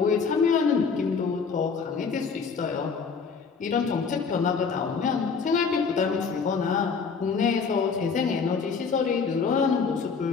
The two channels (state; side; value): quieter; right; 5.4 dB